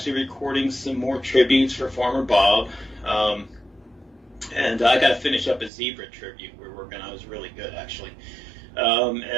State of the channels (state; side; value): drops out; left; at 5.7 s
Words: recording some more tributes for Farmer Bob. And I got to finish up a zebra tribute we're working on. It was really good, actually.